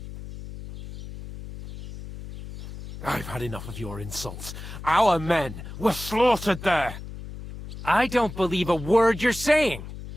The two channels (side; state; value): left; noise; hum, 12 dB below the sound